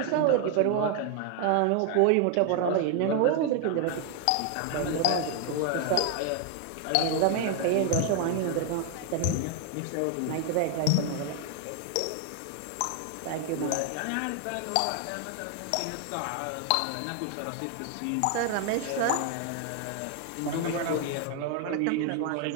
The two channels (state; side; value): different; both; correlation 0.00